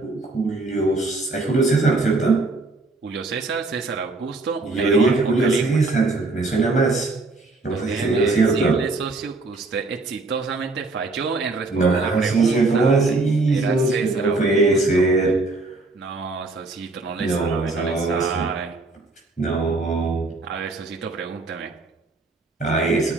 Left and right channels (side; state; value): left; quieter; 3.3 dB